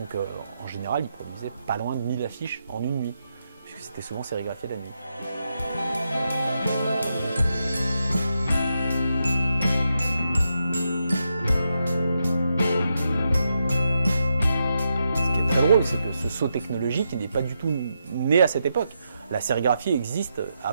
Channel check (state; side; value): inverted; both; correlation -0.84